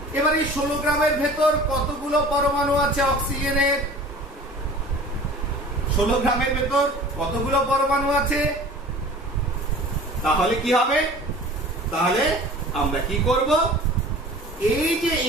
এবার এই 16 গ্রামের ভেতর কতগুলো পরমাণু আছে অক্সিজেনের? 16 গ্রামের ভেতর কতগুলো পরমাণু আছে? তাহলে কি হবে? তাহলে আমরা কি করব? এই যে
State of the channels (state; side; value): normal; both; correlation 0.42